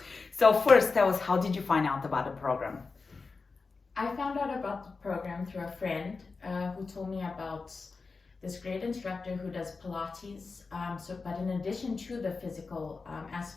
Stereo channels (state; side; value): quieter; right; 4.3 dB